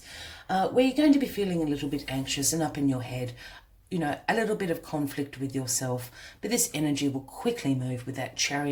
where you're going to be feeling a little bit anxious and up in your head. You know, a little bit of conflict with yourself, but this energy will quickly move with that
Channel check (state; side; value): identical; both; correlation 1.00